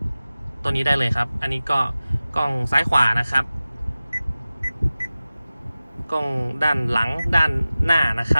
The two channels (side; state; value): both; inverted; correlation -0.97